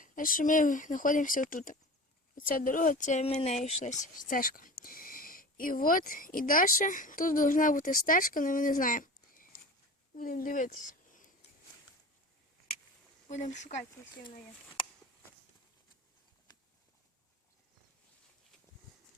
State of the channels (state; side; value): normal; both; correlation 0.34